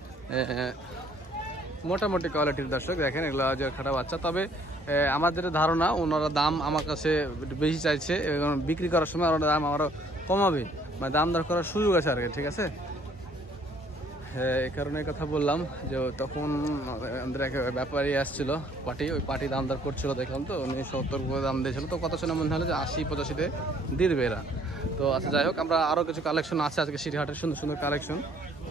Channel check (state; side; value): normal; both; correlation 0.61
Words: মোটামুটি কোয়ালিটির দর্শক দেখেন, এগুলো খাটা বাচ্চা। তবে আমাদের ধারণা ওনারা দাম আমার কাছে বেশি চাইছে, বিক্রি করার সময় ওনারা দাম আরও কমাবে, মানে দাম দর করার সুযোগ আছে আর কি, ঠিক আছে। হ্যাঁ, এই কারণে কথা বললাম যে তখন আমাদের এক ব্যাপারী আসছিল ওই পার্টি দাম দর করছিল, দেখলাম তো উনি 70 করে দাম দিয়েছিল। তো কত শুনে মনে হলো যে 80-85-তে দিবে এরা। তো আচ্ছা যাই হোক, আমরা আরও কিছু কালেকশন আছে আজকে সিটিহাটের, সুন্দর সুন্দর কালেকশন।